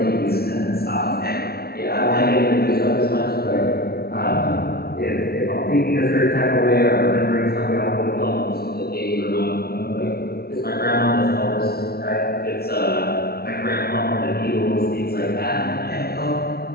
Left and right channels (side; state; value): right; late; 0.45 ms